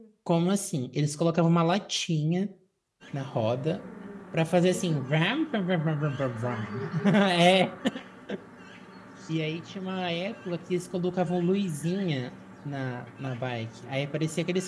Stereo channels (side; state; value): both; identical; correlation 1.00